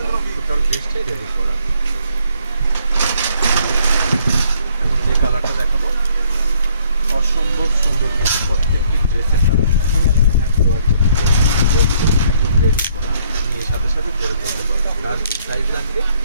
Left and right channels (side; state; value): both; inverted; correlation -0.64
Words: টোটাল ড্রেসটাই রেডি করা। এখন যে কালারটা দেখাবো অসম্ভব সুন্দর, প্রত্যেকটি ড্রেসের কালার একদম রেডি করা নিয়ে সাথে সাথে পরে ফেলতে পারবেন। তার কি সাইজ লাগবে